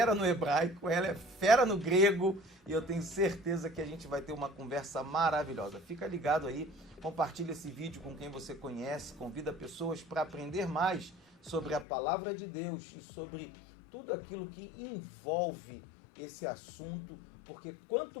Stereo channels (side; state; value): right; drops out; at 11.9 s